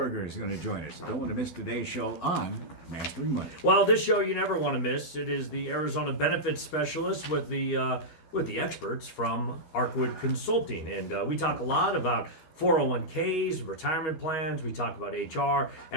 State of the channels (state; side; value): late; right; 13 ms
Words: is going to join us. Don't want to miss today's show on Mastering Money. Well, this show you never want to miss. It is the Arizona Benefits Specialist with the experts from Arkwood Consulting, and we talk a lot about 401ks, retirement plans. We talk about HR,